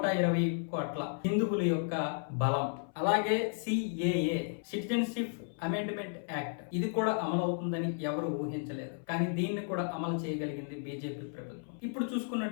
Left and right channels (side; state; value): right; silent; 55 dB below the other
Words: కోట్ల హిందువుల యొక్క బలం. అలాగే సిఏఏ, సిటిజన్షిప్ అమెండ్మెంట్ యాక్ట్, ఇది కూడా అమలు అవుతుందని ఎవరు ఊహించలేదు. కానీ దీన్ని కూడా అమలు చేయగలిగింది బీజేపీ ప్రభుత్వం. ఇప్పుడు